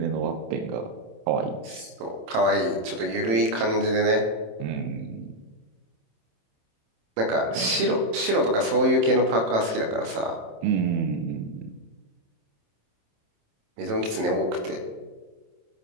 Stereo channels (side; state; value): left; late; 27 ms